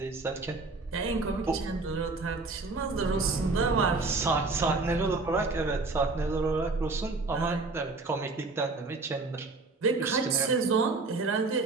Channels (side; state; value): left; quieter; 3.6 dB